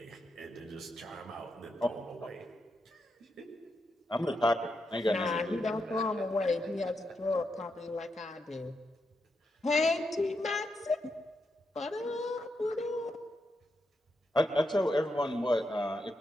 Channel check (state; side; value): normal; both; correlation 0.84